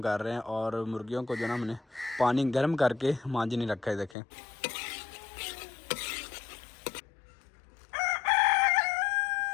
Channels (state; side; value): drops out; right; at 4.2 s